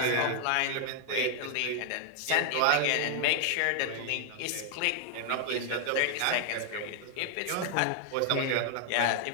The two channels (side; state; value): both; different; correlation 0.00